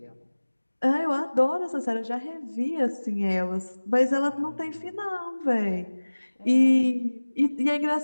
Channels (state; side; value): inverted; both; correlation -1.00